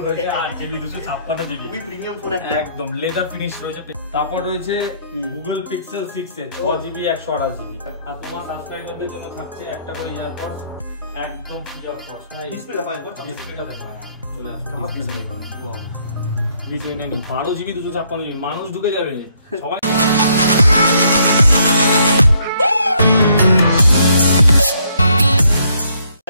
রয়েছে 8GB 256 জিবি, খুবই প্রিমিয়াম ফোন, একদম লেদার ফিনিশ রয়েছে। তারপর রয়েছে Google Pixel 6 এর 6GB 128 জিবি। আর তোমার সাবস্ক্রাইবারদের জন্য থাকছে একটা করে ইয়ারপডস একদম ফ্রি অফ কস্ট। ডিসপ্লে দেখো, ডিসপ্লেটা দেখো, চলে আসবে। ওয়াও, ভিডিও নেই 12GB 256 জিবি, মানুষ ঢুকে যাবে সবাই।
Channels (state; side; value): inverted; both; correlation -0.69